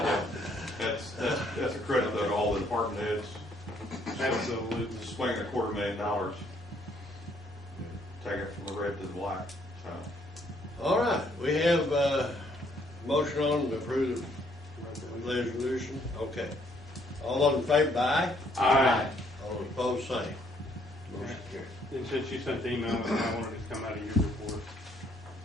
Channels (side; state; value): both; normal; correlation 0.67